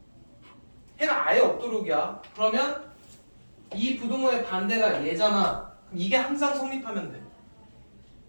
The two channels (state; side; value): inverted; both; correlation -1.00